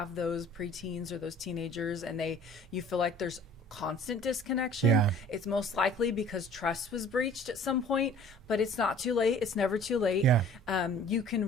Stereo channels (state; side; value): normal; both; correlation 0.50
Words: those preteens or those teenagers and you feel like there's constant disconnection, it's most likely because trust was breached at some point. But it's not too late. It's never too late. You